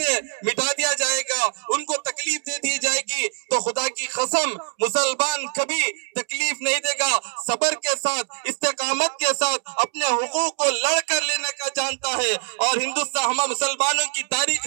मिटा दिया जाएगा, उनको तकलीफ दे दी जाएगी। तो खुदा की कसम मुसलमान कभी तकलीफ नहीं देगा, सब्र के साथ, इस्तेकामत के साथ अपने हुकूक को लड़ कर लेने का जानता है। और हिंदुस्तान हम मुसलमानों की तारीख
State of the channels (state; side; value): silent; left; 63 dB below the other